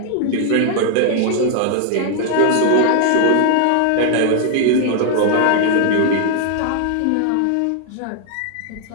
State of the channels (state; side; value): different; both; correlation 0.00